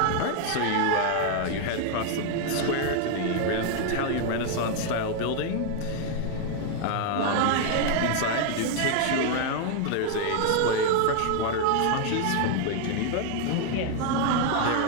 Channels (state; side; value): different; both; correlation 0.00